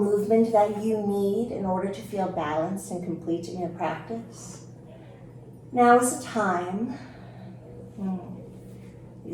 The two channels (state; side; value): identical; both; correlation 1.00